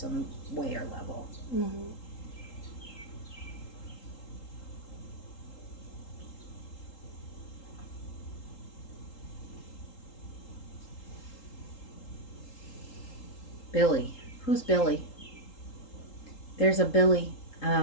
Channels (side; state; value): right; late; 3.8 ms